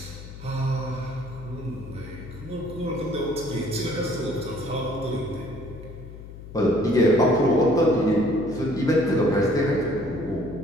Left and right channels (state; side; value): noise; left; hum, 14 dB below the sound